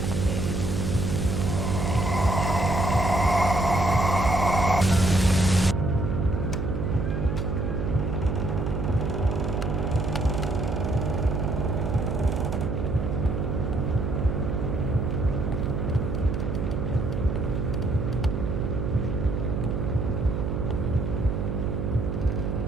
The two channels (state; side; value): noise; right; hum, 1 dB below the sound